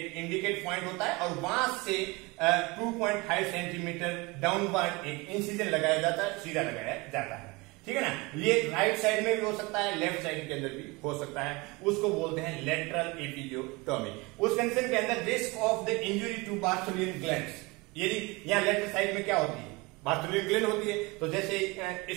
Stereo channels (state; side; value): quieter; left; 25.0 dB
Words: इंडिकेट पॉइंट होता है, और वहां से 2.5 सेंटीमीटर डाउनवर्ड एक इंसिजन लगाया जाता है, सीधा लगाया जाता है, ठीक है ना। ये राइट साइड में भी हो सकता है, लेफ्ट साइड के अंदर भी हो सकता है, उसको बोलते हैं लेटरल एपिजियोटोमी। उस कंडीशन के अंदर risk of the injury to Bartholin glands, यदि यहाँ लेफ्ट साइड में क्या होती है, बार्थोलियन ग्लैंड होती है, तो जैसे